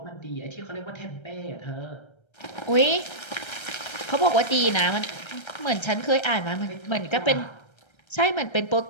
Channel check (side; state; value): right; late; 1.3 ms